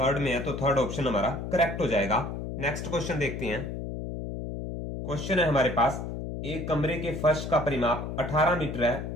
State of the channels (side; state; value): left; noise; hum, 6 dB below the sound